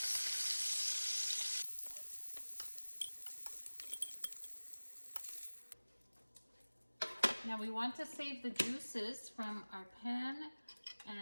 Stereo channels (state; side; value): inverted; both; correlation -1.00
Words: Now we want to save the juices from our pan